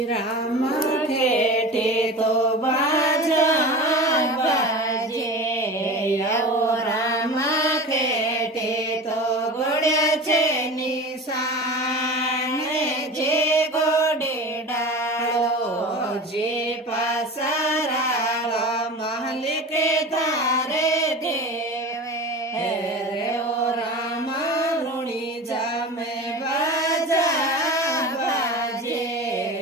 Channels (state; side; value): normal; both; correlation 0.32